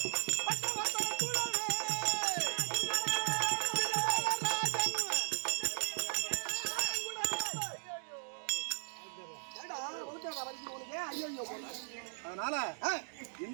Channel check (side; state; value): left; silent; digital silence